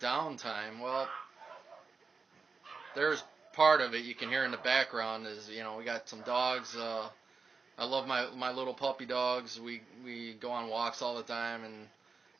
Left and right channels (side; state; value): left; quieter; 4.6 dB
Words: Well, there's part of it you can hear in the background is we got some dogs. I love my little puppy dogs. We go on walks all the time,